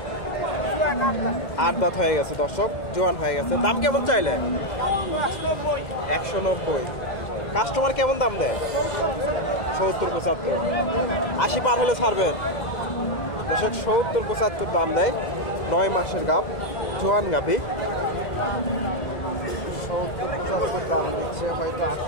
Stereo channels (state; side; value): late; right; 2.1 ms